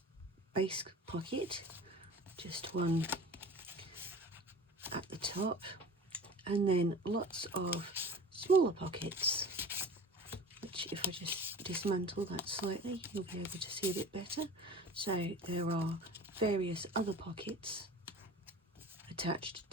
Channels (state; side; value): normal; both; correlation 0.40